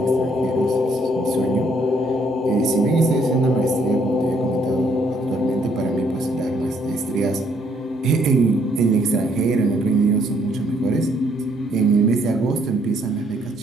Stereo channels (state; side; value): normal; both; correlation 0.68